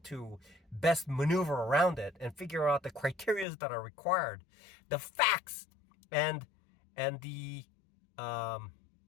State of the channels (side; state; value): right; drops out; at 3.5 s